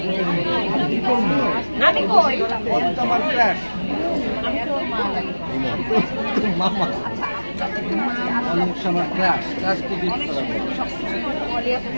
আমি কই তোমার ক্র্যাশ মামা অনেক সময় ক্র্যাশ ক্র্যাশ কি দিতে পারবে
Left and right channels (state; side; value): inverted; both; correlation -1.00